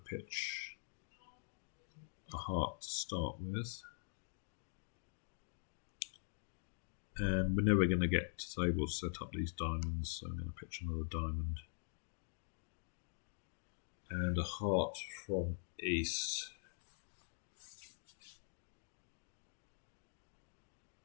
pitch a heart to start with. And we're never going to get to able to set up these diamonds, so I'm going to pitch another diamond. And a heart from East.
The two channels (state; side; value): silent; right; digital silence